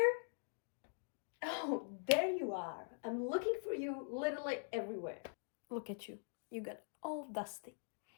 Oh, there you are. I'm looking for you literally everywhere. Look at you. You got all dusty.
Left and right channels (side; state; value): right; silent; digital silence